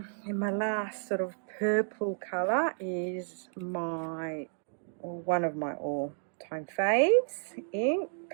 my last sort of purple color is my, or one of my all-time faves ink.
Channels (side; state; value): left; silent; digital silence